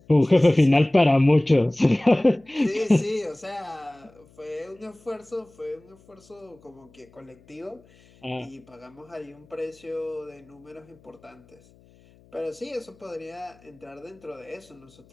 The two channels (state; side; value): noise; left; hum, 28 dB below the sound